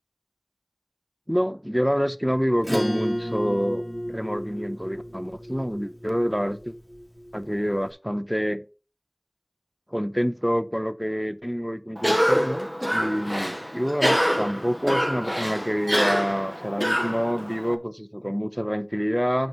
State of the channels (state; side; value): identical; both; correlation 1.00